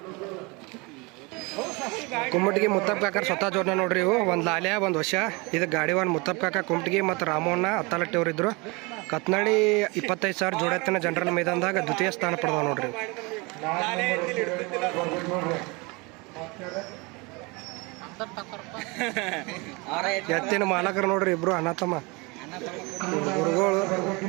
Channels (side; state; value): left; quieter; 27.0 dB